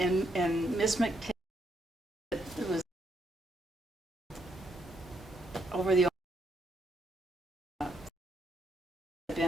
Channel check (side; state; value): both; normal; correlation 0.75